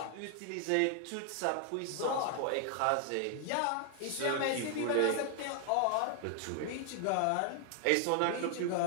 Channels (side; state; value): both; different; correlation 0.00